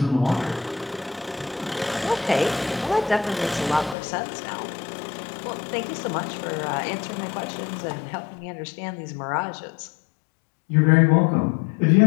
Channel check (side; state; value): right; drops out; at 4.0 s